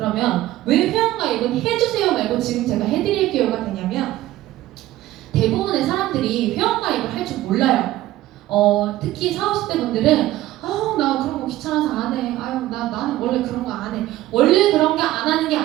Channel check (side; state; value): left; quieter; 15.4 dB